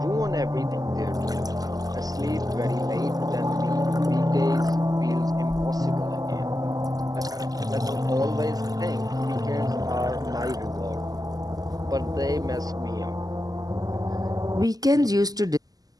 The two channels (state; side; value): late; left; 0.18 ms